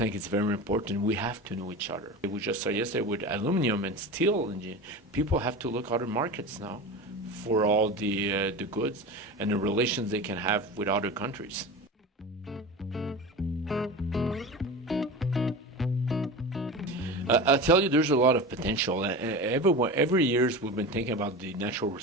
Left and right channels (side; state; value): both; normal; correlation 0.28